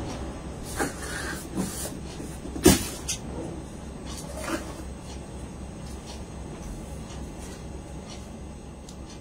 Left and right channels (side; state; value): both; identical; correlation 1.00